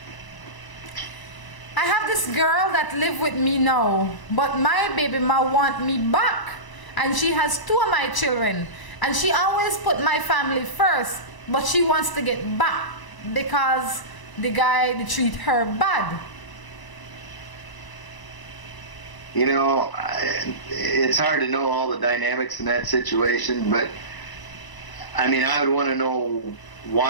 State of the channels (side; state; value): right; late; 1.0 ms